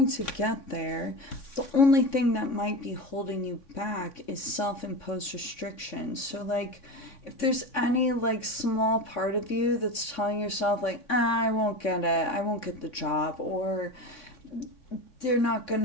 to get there. The only thing that might be holding you back is self-imposed restrictions. So like, if there's any like small part of you that's telling yourself like, I won't get it, I won't get the job, or they're not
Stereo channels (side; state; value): right; late; 3.5 ms